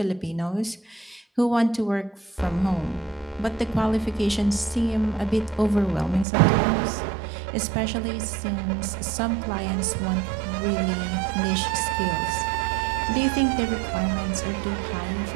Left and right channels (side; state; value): left; drops out; at 6.2 s